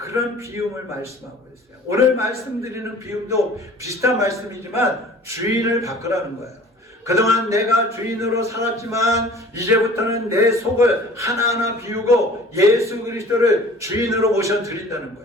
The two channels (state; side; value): normal; both; correlation 0.47